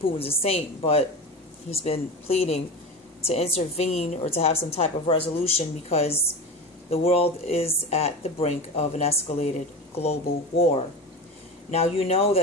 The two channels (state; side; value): normal; both; correlation 0.27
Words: a saint, but he's been pleading to intervene or to have some type of resolution because the world is at the brink of an escalated global war. Now, you know